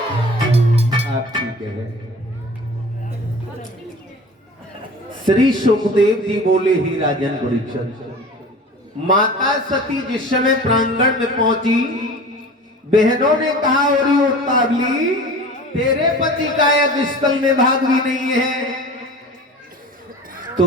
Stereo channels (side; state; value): both; normal; correlation 0.39